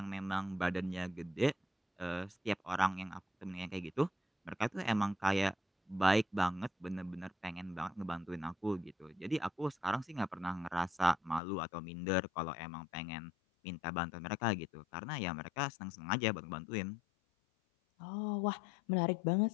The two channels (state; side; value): drops out; right; at 11.4 s